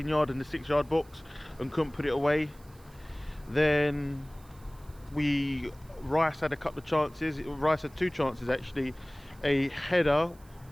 and the 6-yard box and couldn't put it away. Then Rice had a couple of chances. Rice had two chances actually, a header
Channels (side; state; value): right; noise; hiss, 27 dB below the sound